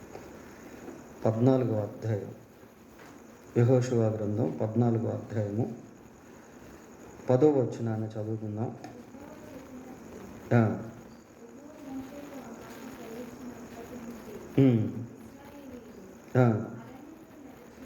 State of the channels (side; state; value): both; identical; correlation 1.00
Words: 14వ అధ్యాయం. యెహోషువ గ్రంథం 14వ అధ్యాయము 10వ వచనాన్ని చదువుకుందాం.